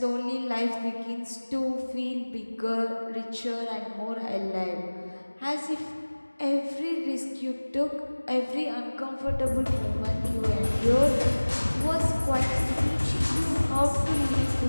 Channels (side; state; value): both; inverted; correlation -1.00